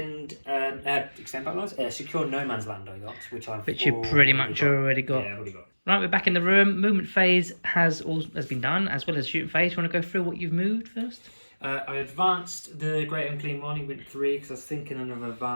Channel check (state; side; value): inverted; both; correlation -1.00